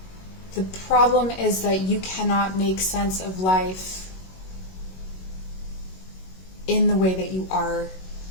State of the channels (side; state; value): right; late; 21 ms